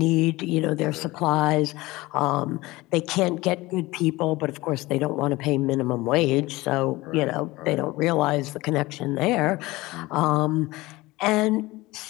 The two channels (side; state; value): right; quieter; 20.4 dB